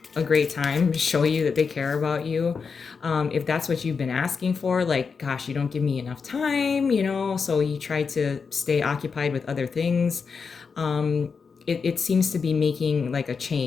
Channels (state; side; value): quieter; right; 5.4 dB